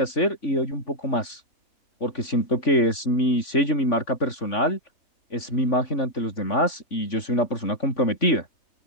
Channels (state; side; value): late; right; 3.5 ms